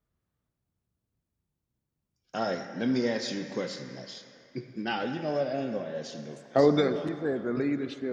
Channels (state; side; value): identical; both; correlation 1.00